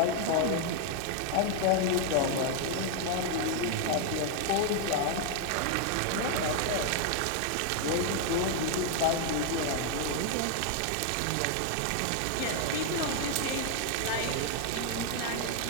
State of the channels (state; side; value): different; both; correlation 0.00